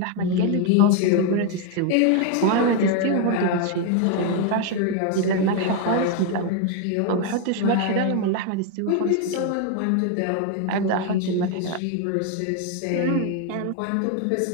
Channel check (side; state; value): both; different; correlation 0.01